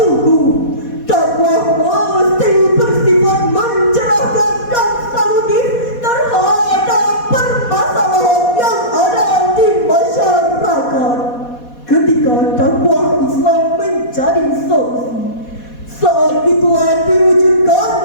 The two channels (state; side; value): late; right; 4.2 ms